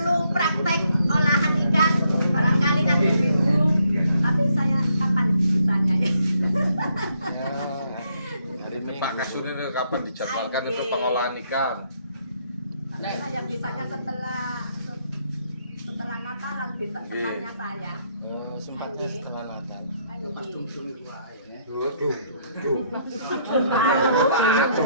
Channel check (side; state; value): both; inverted; correlation -0.72